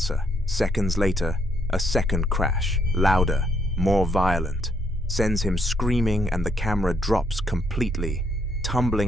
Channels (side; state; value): both; normal; correlation 0.72